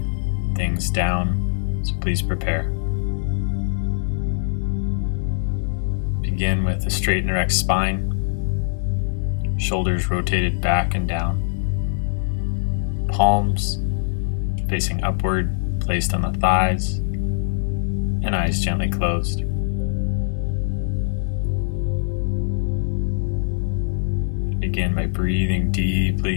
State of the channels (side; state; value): right; silent; 64 dB below the other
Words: things down, so please prepare. Begin with a straight and erect spine, shoulders rotated back and down, palms facing upward, placed on the thighs, and eyes gently closed. Begin by breathing